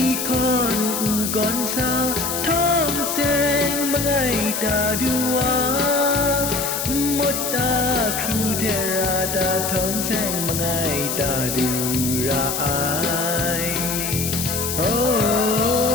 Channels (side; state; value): left; noise; hiss, 3 dB below the sound